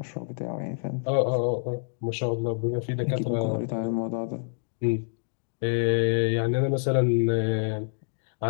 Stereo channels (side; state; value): right; silent; digital silence